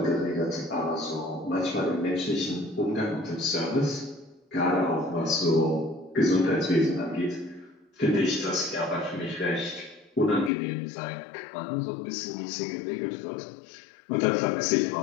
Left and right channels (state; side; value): drops out; right; at 10.5 s